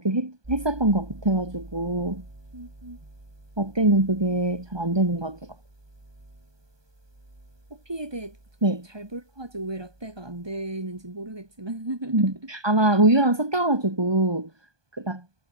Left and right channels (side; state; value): left; late; 1.2 ms